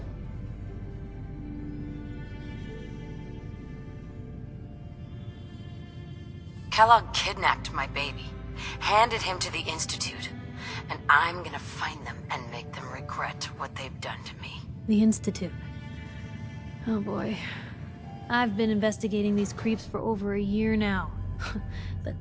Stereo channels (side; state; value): both; identical; correlation 1.00